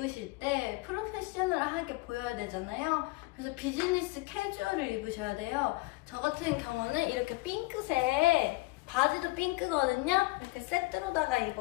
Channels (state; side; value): quieter; right; 22.8 dB